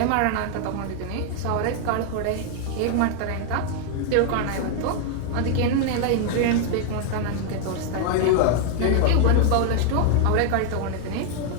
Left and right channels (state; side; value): different; both; correlation 0.00